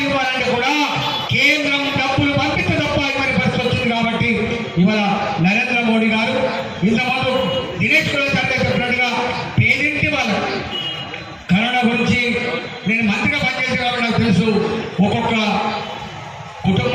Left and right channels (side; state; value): both; identical; correlation 1.00